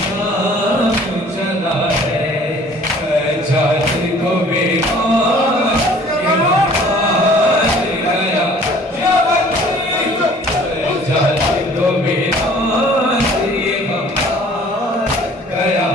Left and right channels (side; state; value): both; normal; correlation 0.52